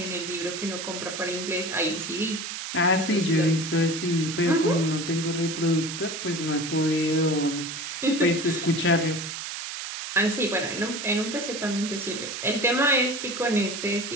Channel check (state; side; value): noise; right; hiss, 6 dB below the sound